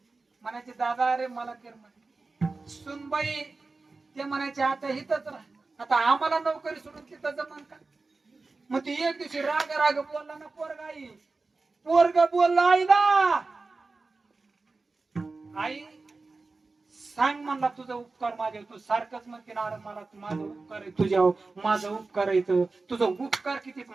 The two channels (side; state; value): left; quieter; 3.7 dB